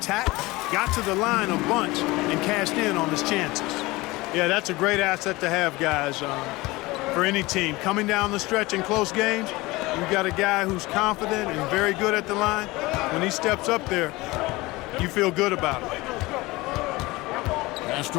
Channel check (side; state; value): right; quieter; 21.3 dB